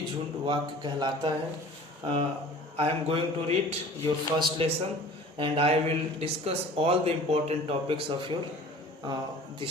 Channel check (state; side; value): normal; both; correlation 0.44